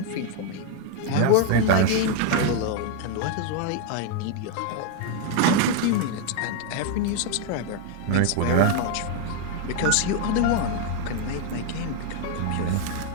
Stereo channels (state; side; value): different; both; correlation 0.00